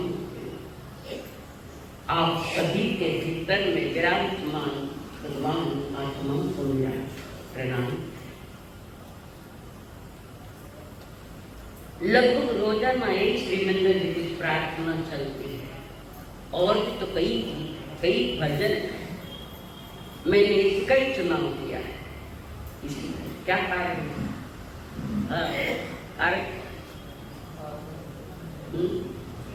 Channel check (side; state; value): both; identical; correlation 1.00